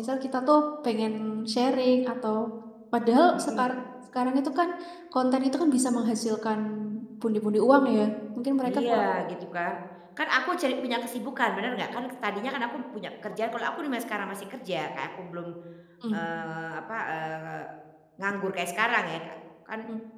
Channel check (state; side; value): identical; both; correlation 1.00